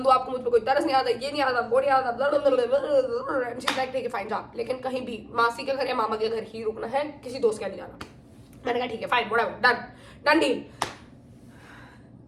हूँ, आपको मुझ पर कोई तरस नहीं आता, ये नहीं आता, वो नहीं आता। ठीक है फाइन जा, लेकिन कहीं भी मासी के घर या मामा के घर ही रुकना है, किसी दोस्त के नहीं जाना। मैंने कहा ठीक है fine whatever, done deal.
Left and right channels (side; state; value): both; identical; correlation 1.00